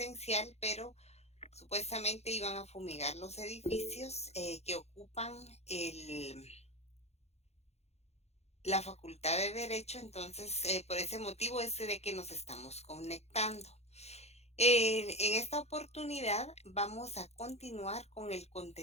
pero supuestamente iban a fumigar los edificios que ocupan la Facultad de Derecho. Entonces por ese motivo es de que nos estamos conectando. En esta oportunidad vamos a continuar con el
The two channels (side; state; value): right; late; 0.31 ms